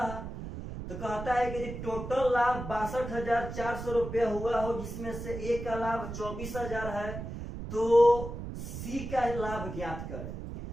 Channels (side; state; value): right; noise; rumble, 8 dB below the sound